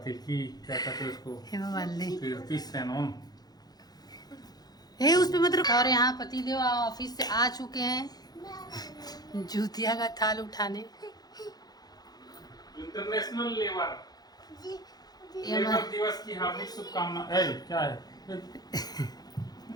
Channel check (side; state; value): right; late; 0.19 ms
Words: कहते हैं उसको, हेमा मालिनी, कीर्ति सेनन। उस पे मत। और यहाँ पतिदेव ऑफिस से आ चुके हैं जूतिया का थाल उठाने। इंटरनेशनल लेबर दिवस की हार्दिक शुभकामनाएं। क्या है?